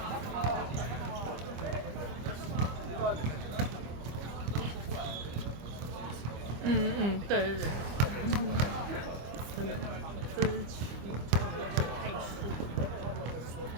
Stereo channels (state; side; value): late; left; 25 ms